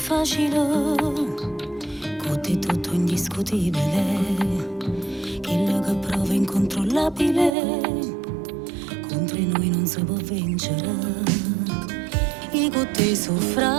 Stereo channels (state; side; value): drops out; left; at 7.6 s